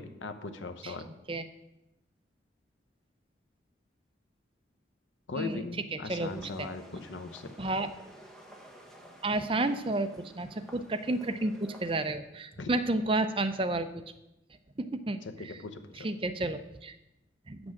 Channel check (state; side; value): normal; both; correlation 0.40